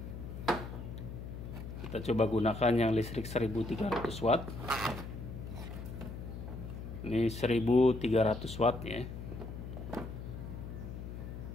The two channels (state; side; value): noise; left; hum, 8 dB below the sound